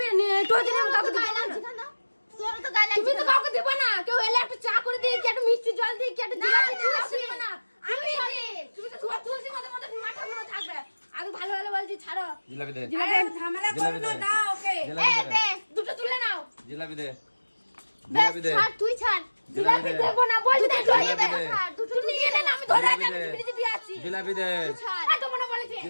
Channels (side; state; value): both; inverted; correlation -1.00